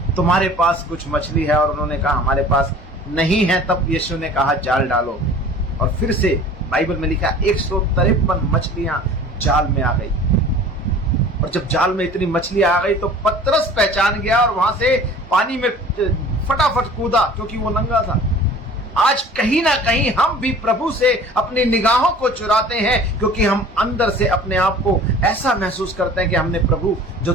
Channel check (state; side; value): normal; both; correlation 0.45